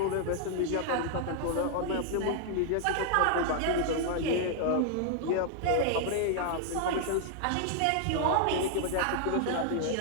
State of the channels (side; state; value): both; different; correlation 0.00